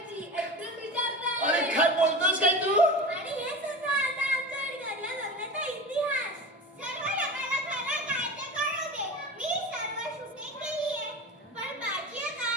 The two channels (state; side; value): normal; both; correlation 0.30